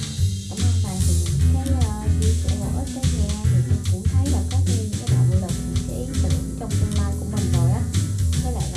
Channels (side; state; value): both; identical; correlation 1.00